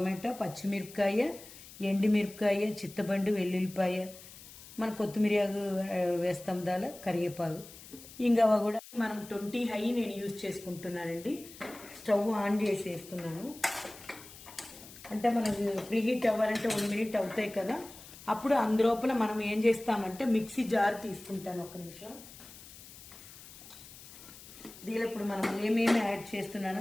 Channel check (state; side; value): noise; left; hiss, 17 dB below the sound